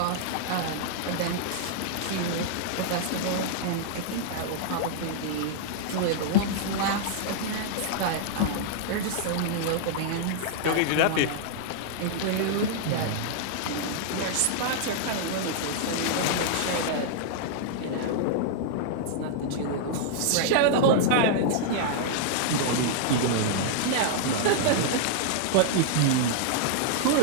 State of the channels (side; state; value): both; different; correlation -0.01